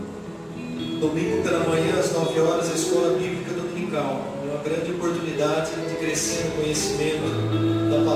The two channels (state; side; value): identical; both; correlation 1.00